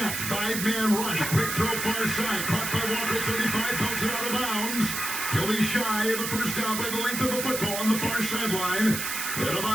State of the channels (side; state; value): right; noise; hiss, 3 dB below the sound